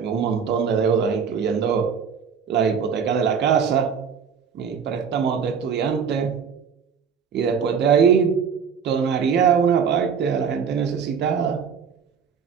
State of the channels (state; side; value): quieter; left; 6.7 dB